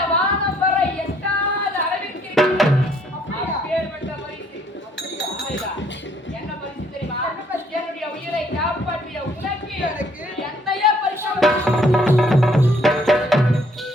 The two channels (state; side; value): normal; both; correlation 0.65